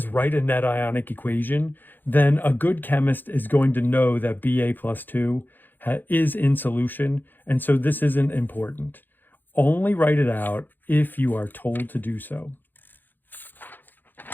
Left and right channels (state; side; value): late; right; 0.090 ms